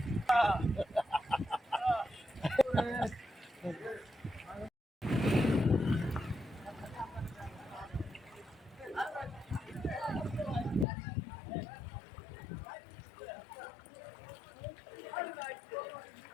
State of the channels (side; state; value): right; drops out; at 10.9 s